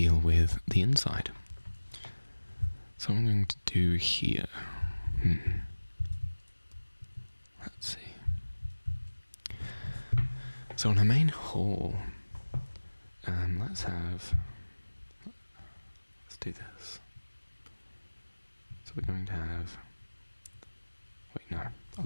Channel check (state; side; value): inverted; both; correlation -1.00